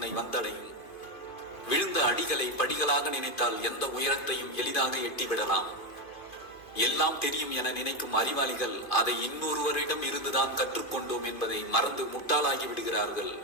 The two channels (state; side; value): late; right; 2.5 ms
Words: வந்தடையும். விழுந்த அடிகளை படிகளாக நினைத்தால் எந்த உயரத்தையும் எளிதாக எட்டிவிடலாம். எல்லாம் தெரியும் என நினைக்கும் அறிவாளிகள் அதை இன்னொருவரிடம் இருந்துதான் கற்றுக்கொண்டோம் என்பதை மறந்து முட்டாளாகி விடுகிறார்கள்.